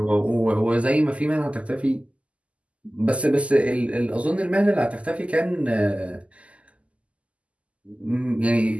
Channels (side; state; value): left; late; 0.063 ms